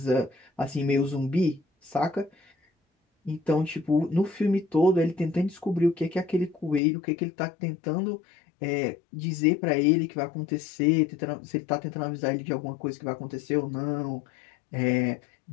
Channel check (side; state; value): right; drops out; at 6.8 s